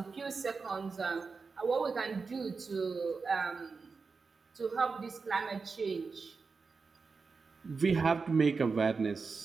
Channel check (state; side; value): quieter; left; 4.7 dB